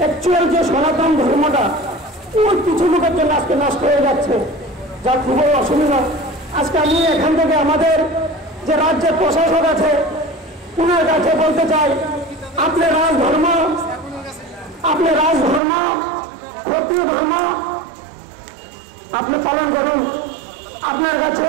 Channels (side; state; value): left; drops out; at 15.6 s